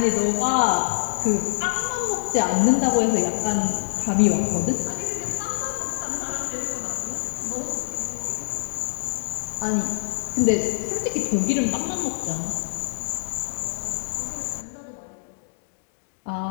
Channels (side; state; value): right; silent; digital silence